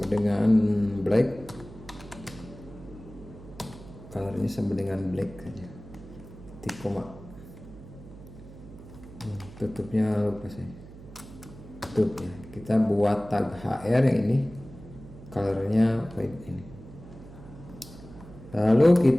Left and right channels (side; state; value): right; noise; hum, 17 dB below the sound